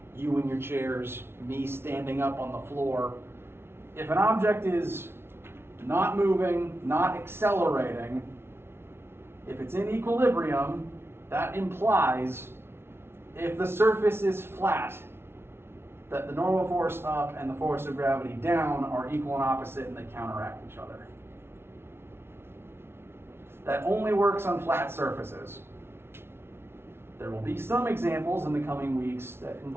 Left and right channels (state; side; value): late; left; 0.12 ms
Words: you in your chairs, me standing up on the floor, if an object is not moving, not accelerating, if it's in equilibrium, that implies if the surface is flat, that the normal force up and the force of gravity down are equal and opposite and they counteract each other. That only works on flat surfaces. There will be some examples in the coming weeks that